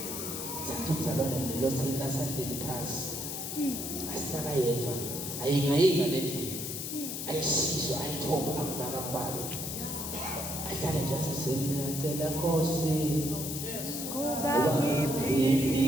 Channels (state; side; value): noise; left; hiss, 5 dB below the sound